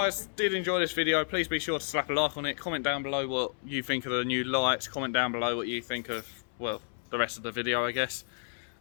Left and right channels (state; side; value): silent; right; 57 dB below the other